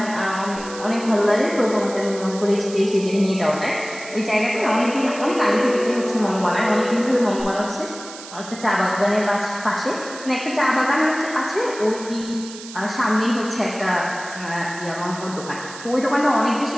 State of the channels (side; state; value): right; noise; hiss, 14 dB below the sound